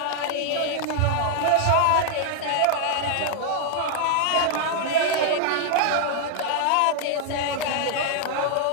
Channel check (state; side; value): different; both; correlation 0.00